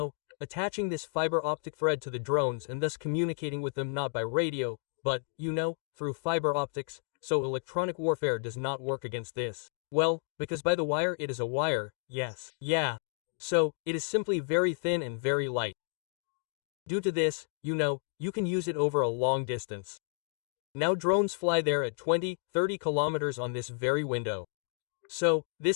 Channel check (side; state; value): right; silent; 57 dB below the other